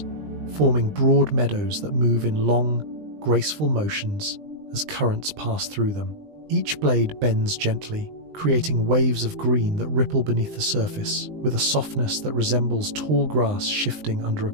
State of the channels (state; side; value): late; left; 20 ms